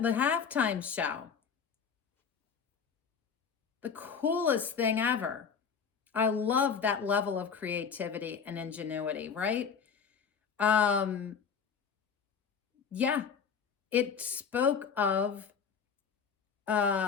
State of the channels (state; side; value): quieter; right; 6.5 dB